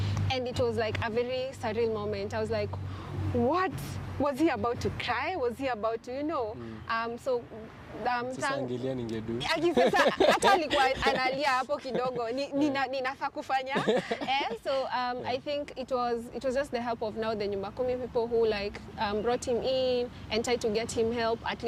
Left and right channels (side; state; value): both; identical; correlation 1.00